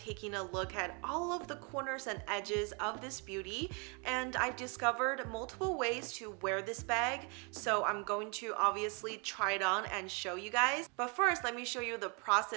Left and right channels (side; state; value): left; quieter; 34.2 dB